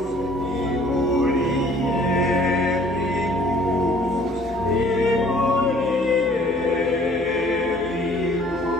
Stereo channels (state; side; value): normal; both; correlation 0.55